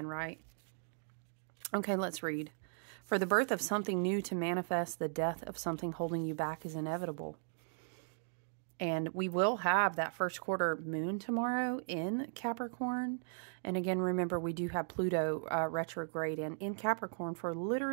right? Okay, let's read. For the birth of something new to manifest, the death of something holding you back is inevitable. And we will have that first quarter moon tomorrow in Capricorn. And again, remember, we do have Pluto retrograde in Capricorn for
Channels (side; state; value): left; silent; digital silence